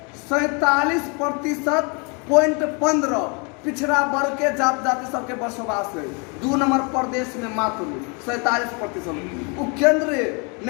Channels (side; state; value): right; quieter; 33.6 dB